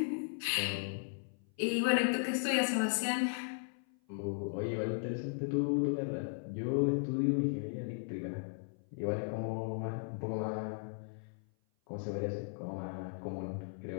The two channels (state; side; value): silent; right; 53 dB below the other